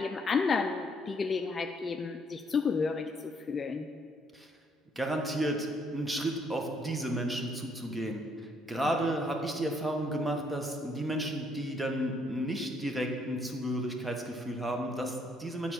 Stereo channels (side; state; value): both; normal; correlation 0.69